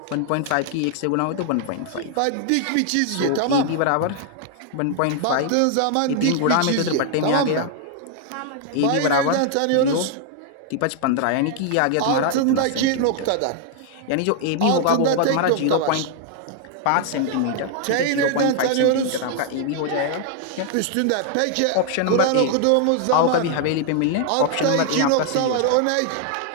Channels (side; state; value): both; different; correlation 0.00